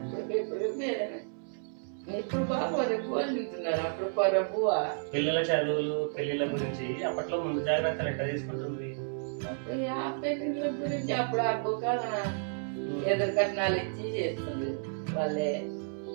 ఇప్పుడు మేడమే. ఇప్పుడు బాగా పువ్వులు తింటున్నారు, అప్పుడు కొర్ర పువ్వ. పిల్లల చదువులు, పెళ్లిళ్ళ గురించి అప్పట్లో ముందు జాగ్రత్తలు ఎట్లా తీసుకుంటుంది? అప్పుడు ఆ పెళ్లిళ్ళ గురించి అప్పుడు ఆ బుకాల ఎదురు కట్నాలు ఇచ్చి చేస్తుంది. వాళ్ళే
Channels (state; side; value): silent; left; 57 dB below the other